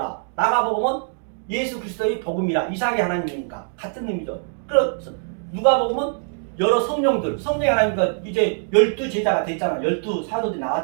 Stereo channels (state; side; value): silent; left; digital silence